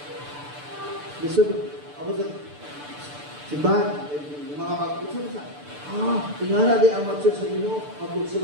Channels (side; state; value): left; late; 6.8 ms